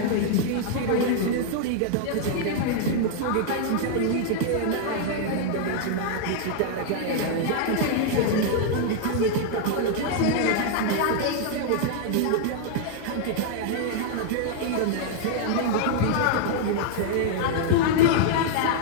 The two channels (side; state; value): both; different; correlation -0.01